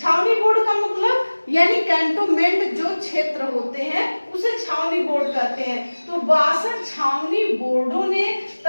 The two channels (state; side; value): inverted; both; correlation -1.00